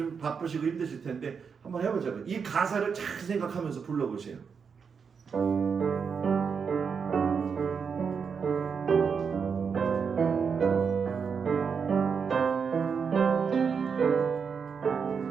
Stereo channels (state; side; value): quieter; left; 6.1 dB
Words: 바쁘시고 힘드실 텐데 한번 해보자고요. 이 가사를 잘 생각하면서 불러보세요.